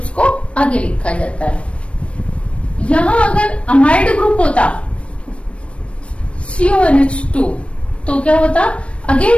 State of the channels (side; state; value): right; late; 0.061 ms